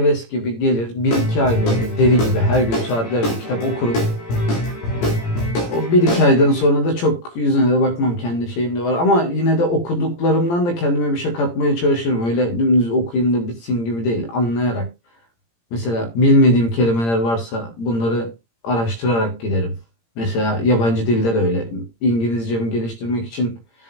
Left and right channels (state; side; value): late; right; 17 ms